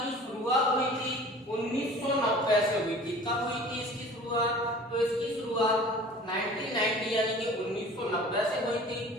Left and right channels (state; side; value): normal; both; correlation 0.44